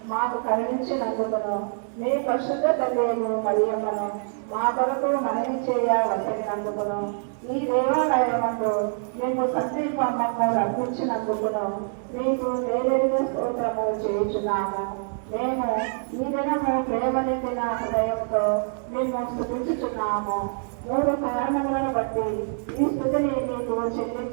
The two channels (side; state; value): left; silent; digital silence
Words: మాకు కరుణించినందుకును మీ పరిశుద్ధ తల్లియము మరియమ్మను మా కొరకు మనవి చేయ వసగినందుకును ఈ దేవాలయమందు మేము సందీపమ్మను అర్పించినందుకును మీకు వేలడిన స్తోత్రము చేయుచున్నాము. మేము ఈ దినము ప్రేమ నిండిన హృదయంతో మేము స్తుతించుచున్నాము. 3 కారణములను బట్టి ఈ స్థుతిని మీకు